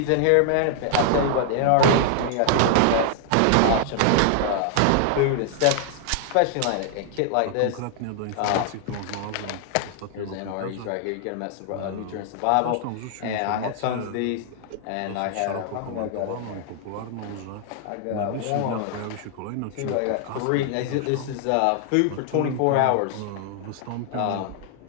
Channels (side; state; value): both; different; correlation 0.00